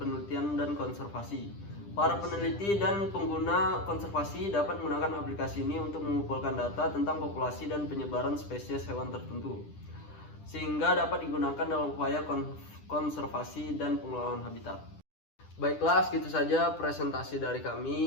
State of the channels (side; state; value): right; late; 10 ms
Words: dan konservasi. Para peneliti dan pengguna konservasi dapat menggunakan aplikasi ini untuk mengumpulkan data tentang populasi dan penyebaran spesies hewan tertentu, sehingga dapat digunakan dalam upaya konservasi dan pengelolaan habitat. Baiklah, segitu saja presentasi dari